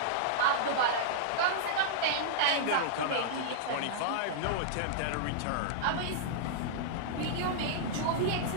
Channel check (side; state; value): both; different; correlation -0.02